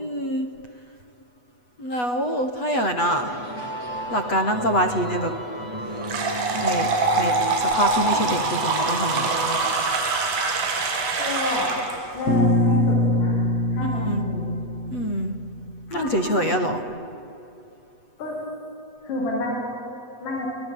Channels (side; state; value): right; late; 8.1 ms